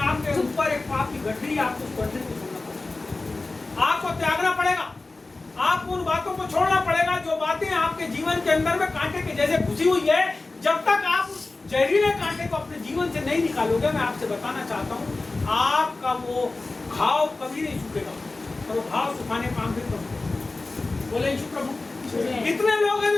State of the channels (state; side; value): quieter; right; 3.3 dB